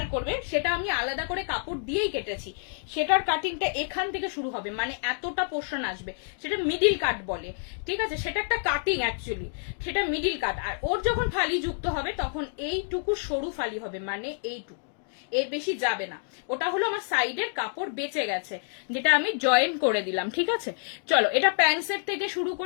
করবে, সেটা আমি আলাদা করে কাপড় দিয়েই কেটেছি। সেটার কাটিংটা এখান থেকে শুরু হবে, মানে এতটা পোর্শন আসবে, সেটা মিডিল কাট বলে। ঠিক আছে, সেটা একটা কাটিং অ্যাকচুয়ালি, সেটা মিডিল কাট। আর ওর যখন ফালি যুক্ত হবে তখন এইটুকু সরু ফালি হবে, মানে এইটুকু, এর বেশি যাবে না। ওটা হলো আমার সাইডের কাপড় বেঁচে গেছে, যেটা আমি জয়েন করে দিলাম। ঠিক আছে, চলো এটা প্যান্ট সেট থেকে শুরু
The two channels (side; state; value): right; silent; digital silence